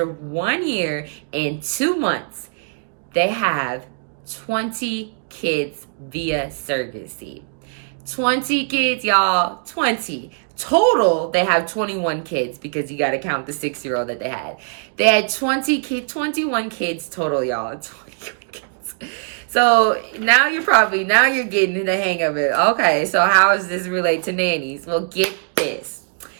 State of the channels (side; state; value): left; silent; digital silence